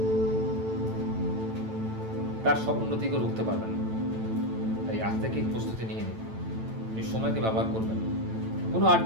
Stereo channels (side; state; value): left; late; 9.0 ms